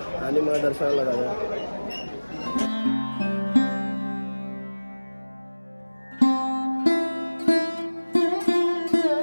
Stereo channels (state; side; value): inverted; both; correlation -1.00